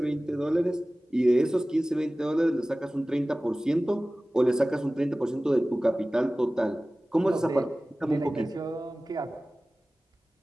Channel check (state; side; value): normal; both; correlation 0.97